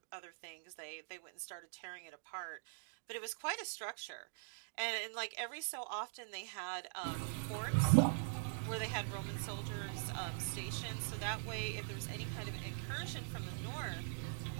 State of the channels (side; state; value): left; silent; digital silence